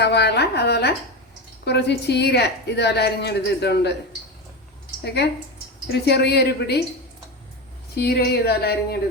അതുപോലെ കുറച്ച് ചീര ഇതുപോലെ അരിഞ്ഞെടുത്തിട്ടുണ്ട്. ഓക്കെ, ഒരു ചെറിയൊരു പിടി ചീര ഇതുപോലെ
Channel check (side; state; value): both; normal; correlation 0.19